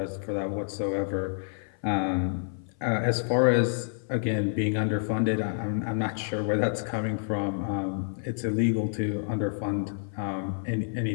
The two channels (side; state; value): right; silent; 56 dB below the other